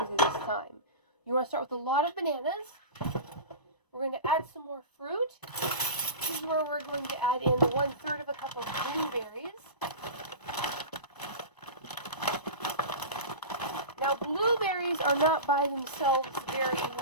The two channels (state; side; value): late; right; 1.0 ms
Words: this time. You want to start with a lot of bananas. We're going to add some more fruit. This is where we're going to add in 1/3 of a cup of blueberries. Now, blueberries are not by themselves very